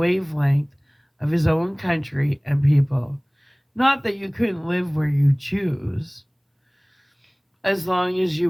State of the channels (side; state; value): both; identical; correlation 1.00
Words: of his own country and people. Not that you couldn't live where you choose, as long as you